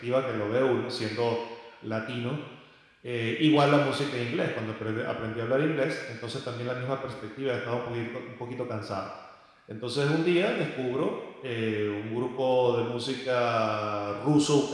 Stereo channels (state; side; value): identical; both; correlation 1.00